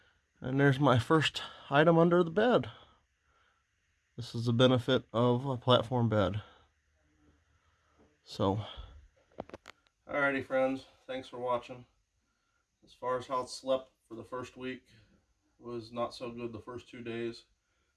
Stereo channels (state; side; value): identical; both; correlation 1.00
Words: And there's my first item under the bed. This is the benefit of a platform bed. So, alrighty friends, thanks for watching. As far as how it slept for the first week, it was not so good the first 2 days,